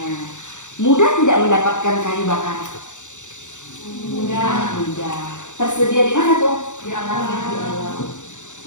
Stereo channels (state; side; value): late; right; 0.85 ms